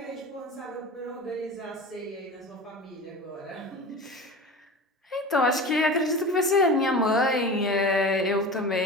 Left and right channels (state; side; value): normal; both; correlation 0.32